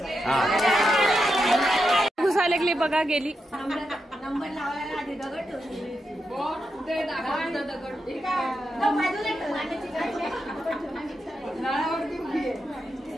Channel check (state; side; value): normal; both; correlation 0.86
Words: घुसा लागली बघा गेली। नंबर लावायला आधी दगड ठेवली।